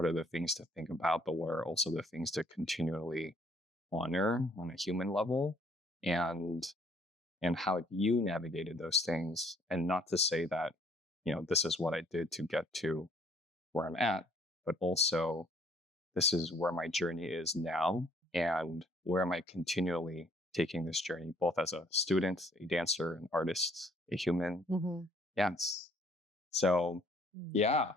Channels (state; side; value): normal; both; correlation 0.62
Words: are the things to think about, but what are also the things to continually honor on a human level, and how you navigated those things? And not to say that, this is what I did to get to where I'm at, but also this is where my journey is now, and where am I continually taking this journey, both as a student, a dancer, an artist, a human. Yes. So,